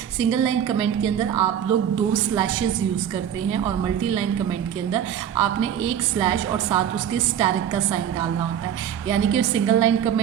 सिंगल लाइन कमेंट के अंदर आप लोग दो स्लैशेस यूज़ करते हैं और मल्टी लाइन कमेंट के अंदर आपने एक स्लैश और साथ उसके स्टैरिक का साइन डालना होता है। यानी कि सिंगल लाइन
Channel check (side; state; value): left; quieter; 9.4 dB